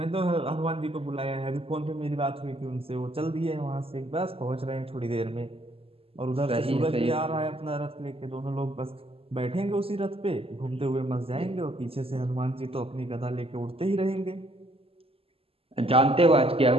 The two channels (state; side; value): late; left; 0.28 ms